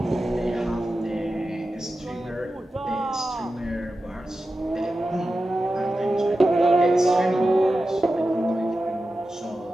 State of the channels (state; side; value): normal; both; correlation 0.93